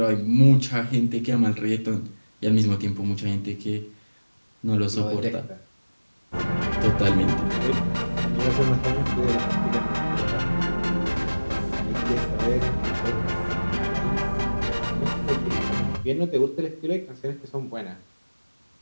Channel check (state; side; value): inverted; both; correlation -1.00